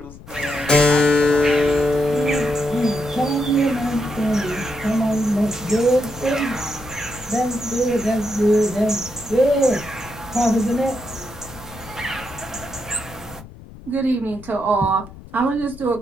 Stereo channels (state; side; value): noise; left; rumble, 17 dB below the sound